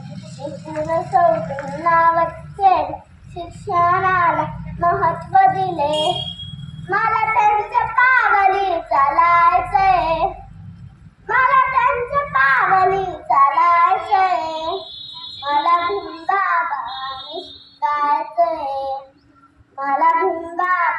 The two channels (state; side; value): identical; both; correlation 1.00